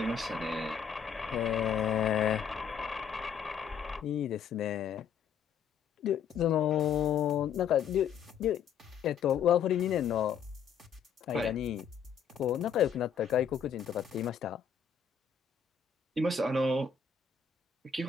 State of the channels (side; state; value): right; quieter; 7.3 dB